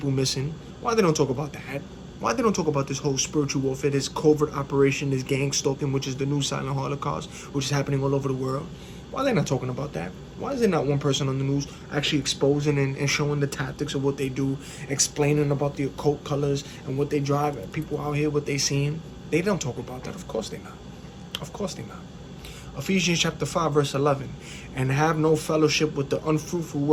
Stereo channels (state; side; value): identical; both; correlation 1.00